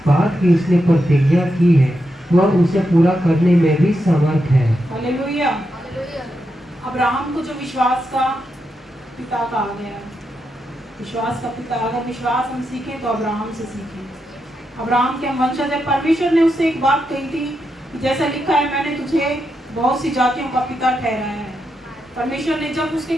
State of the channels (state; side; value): normal; both; correlation 0.85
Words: बात की उसने प्रतिज्ञा की है वह उसे पूरा करने में भी समर्थ है। हालेलुया। अब्राहम को जो विश्वास का पिता कहा गया है, विश्वास का पिता, अगर विश्वास हम सीखें तो अब्राहम से सीखें। अब्राहम के हम वंशज है। परमेश्वर ने उससे एक बात कही थी कि जैसा लिखा है, मैंने तुझे बहुत सी जातियों का पिता ठहराया है। परमेश्वर ने, जब उसके